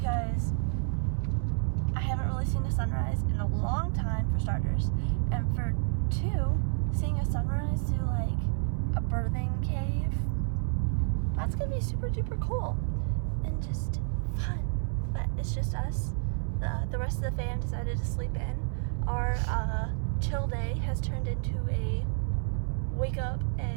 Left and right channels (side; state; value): left; silent; 57 dB below the other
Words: I haven't really seen the sunrise in a long time, for starters, and for 2, seeing a sunrise through like a birthing cave, that's gonna be super duper cool and just fun. But it's just us. The rest of the fam decided to sleep in. our chill day has turned into a wake up